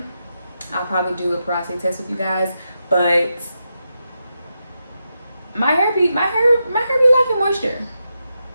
I'll probably do a porosity test with you guys. But my hair be liking moisture.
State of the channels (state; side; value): inverted; both; correlation -0.87